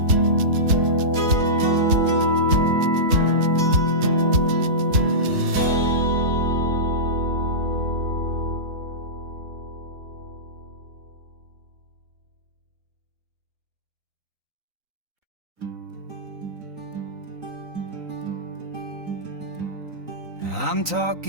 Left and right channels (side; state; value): left; late; 3.9 ms